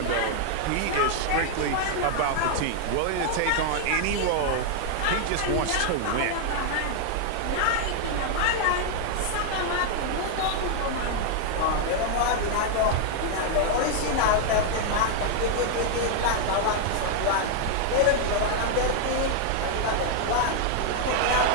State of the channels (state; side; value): different; both; correlation 0.00